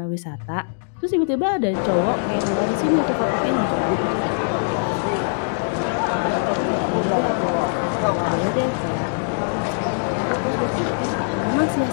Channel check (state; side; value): silent; right; digital silence